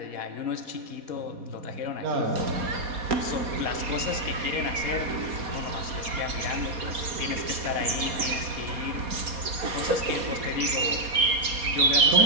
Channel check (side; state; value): left; late; 4.2 ms